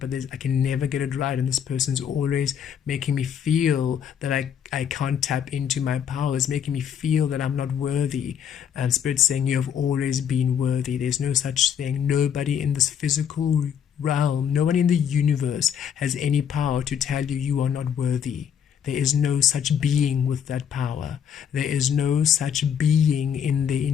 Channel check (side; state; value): right; quieter; 8.4 dB